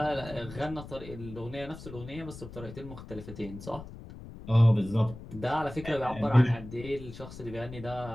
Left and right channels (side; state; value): left; noise; rumble, 13 dB below the sound